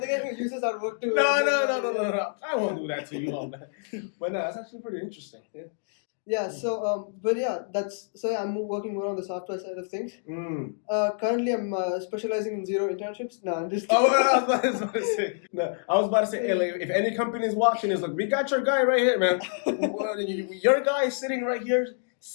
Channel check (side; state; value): right; silent; digital silence